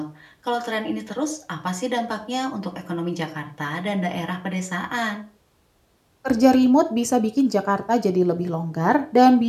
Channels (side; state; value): both; identical; correlation 1.00